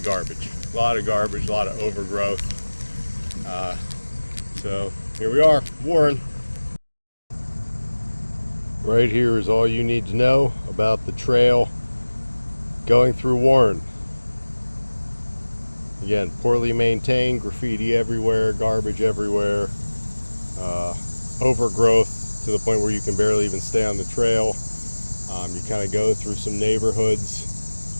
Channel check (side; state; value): both; inverted; correlation -1.00